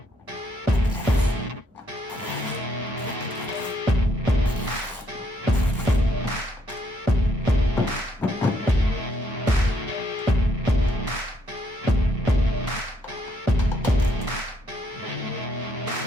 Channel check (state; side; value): normal; both; correlation 0.72